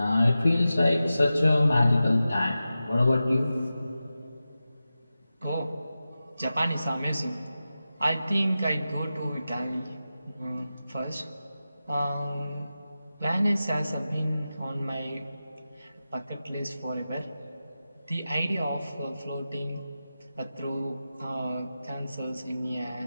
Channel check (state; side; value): inverted; both; correlation -0.93